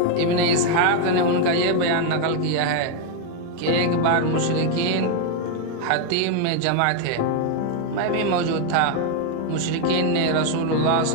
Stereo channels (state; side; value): different; both; correlation 0.01